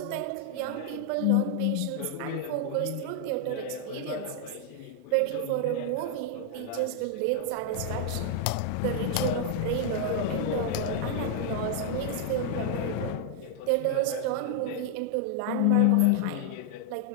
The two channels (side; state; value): both; different; correlation 0.00